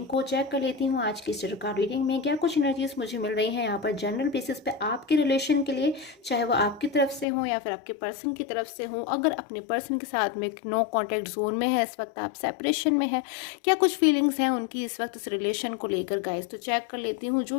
को। चेक कर लेती हूँ आज की स्टार कार्ड रीडिंग में क्या कुछ एनर्जीज मुझे मिल रही हैं यहाँ पर जनरल बेसिस पे आपके रिलेशन के लिए, चाहे वो आपकी तरफ से हो या फिर आपके पर्सन की तरफ से हो। अगर अपने पर्सन के साथ में नो कॉन्टैक्ट जोन में है, इस वक्त आप सेपरेशन में है, क्या कुछ फीलिंग्स हैं उनकी इस वक्त इस रिलेशन को लेकर गाइस। तो चेक कर लेती हूँ,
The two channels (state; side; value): drops out; right; at 7.2 s